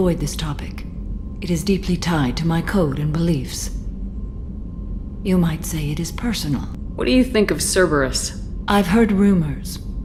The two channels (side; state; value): both; identical; correlation 1.00